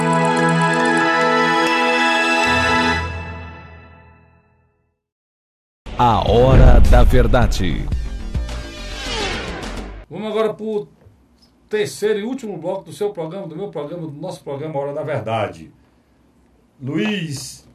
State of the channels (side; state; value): both; identical; correlation 1.00